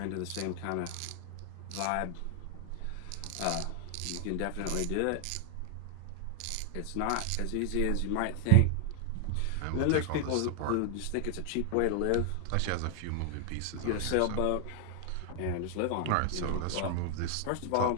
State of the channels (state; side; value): different; both; correlation 0.00